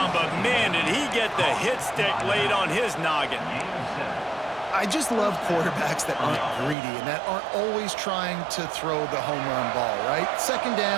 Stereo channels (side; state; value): left; drops out; at 6.8 s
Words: but man, did he get the hit stick laid on his noggin. I just love quarterbacks that aren't greedy and that aren't always trying to throw the home run ball, right? 2nd